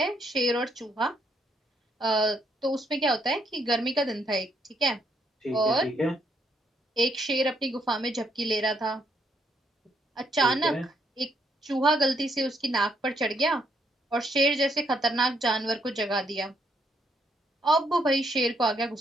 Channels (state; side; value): normal; both; correlation 0.73